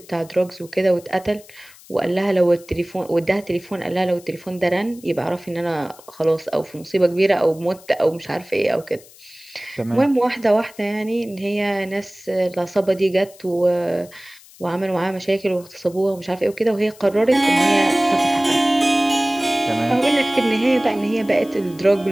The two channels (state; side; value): noise; left; hiss, 23 dB below the sound